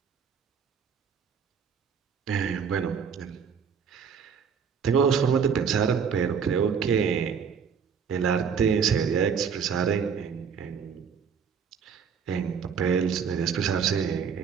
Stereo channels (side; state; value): left; quieter; 6.7 dB